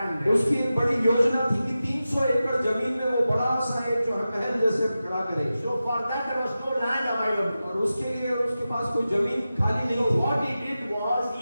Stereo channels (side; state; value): both; inverted; correlation -0.93